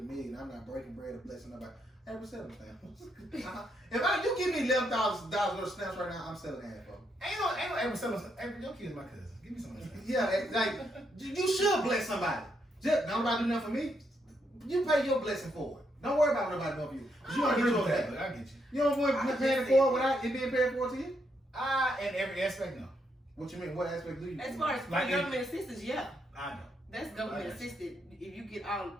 million. I'm not breaking bread or blessing nobody. April, sell them stamps. If you give me $11,000 worth of stamps right now, I'm selling half of them. Ain't no April selling. April, your kid's my cousin. Give me some of that. Yeah, like you should bless somebody. Just nobody do nothing for me. You pay your blessing forward. Don't worry about nobody doing for you. You don't get your that. I get you. You don't want to pay it forward without it being paid for to you? In every aspect, no. What you mean? What aspect do you? As far as Like government assistance, yeah. I know. That's government assisted. If you get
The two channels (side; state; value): both; normal; correlation 0.78